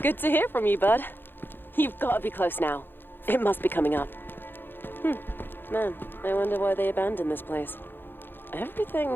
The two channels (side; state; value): right; late; 0.099 ms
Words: Good to hear from you, bud. You've got to be close now. It must be coming up. Man, I wonder why they abandoned this place.